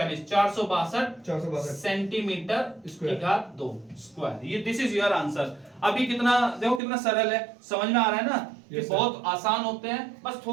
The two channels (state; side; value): drops out; left; at 6.8 s